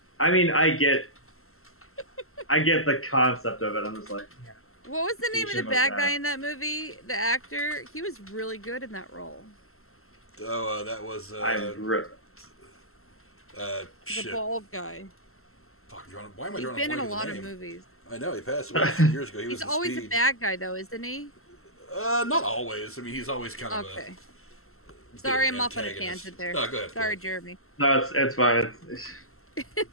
I mean, I get the concept of it. I'm just like, yeah. What was the name of the bad guy in that movie? The actor? He was really good in that role. Oh, that was the bald guy. Fuck, why am I drawing a blank? He's been in a lot of movies. I know, he passed away a few years ago. He's always a bad guy, though, isn't he? Not always. I mean, he's always kind of okay. Sorry, I'm off on a tangent there. No, go ahead. Sorry, Jeremy. No, it's fine. It's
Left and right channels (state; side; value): late; right; 0.62 ms